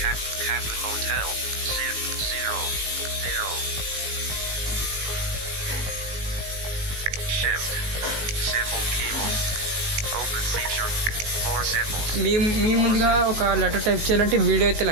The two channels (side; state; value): left; late; 19 ms